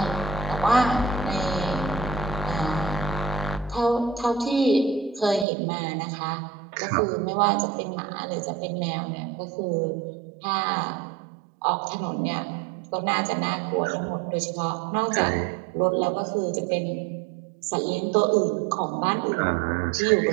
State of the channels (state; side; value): drops out; left; at 5.5 s